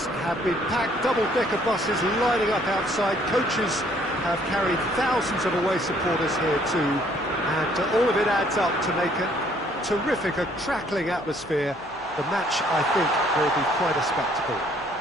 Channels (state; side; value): normal; both; correlation 0.63